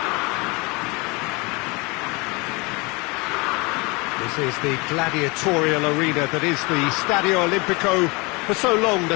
This is the gladiatorial arena that is the Stadio Olimpico, for so long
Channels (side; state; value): right; quieter; 27.1 dB